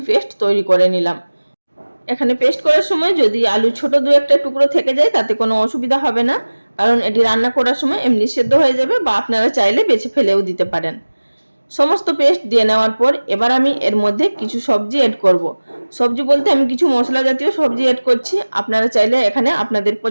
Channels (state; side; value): inverted; both; correlation -1.00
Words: পেস্ট তৈরি করে নিলাম। এখানে পেস্ট করার সময় যদি আলু ছোট দু একটা টুকরো থেকে যায় তাতে কোনো অসুবিধা হবে না, কারণ এটি রান্না করার সময় এমনি সেদ্ধ হয়ে যাবে, বা আপনারা চাইলে বেছে ফেলেও দিতে পারেন। সমস্ত পেস্ট দিয়ে নেওয়ার পর এবার আমি এর মধ্যে কিছু সবজি অ্যাড করব। সবজি বলতে আমি কিছু মশলা জাতীয় সবজি অ্যাড করছি। আপনারা চাইলে এখানে আপনাদের